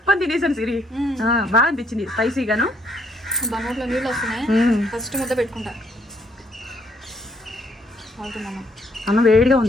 తినేసాను సిరి. బాగా అనిపించింది స్పైసీగాను. బంగాట్లో నీళ్ళు వస్తున్నాయి. ఫస్ట్ ముద్ద పెట్టుకుంటా. అన్నం వేడిగా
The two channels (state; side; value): normal; both; correlation 0.69